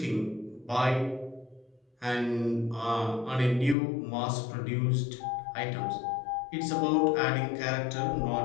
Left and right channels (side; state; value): right; drops out; at 3.8 s